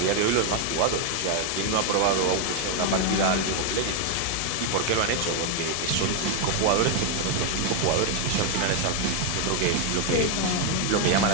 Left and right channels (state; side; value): different; both; correlation 0.00